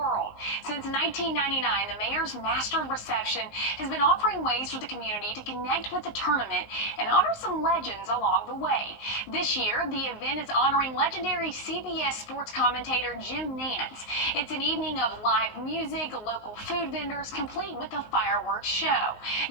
Since 1999, the mayor's master reception has been offering ways for the community to connect with the tournament and honor some legends along the way. This year, the event is honoring legendary CBS sports commentator Jim Nance. It's an evening of live music, local food vendors, complete with a fireworks show.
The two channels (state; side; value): late; right; 19 ms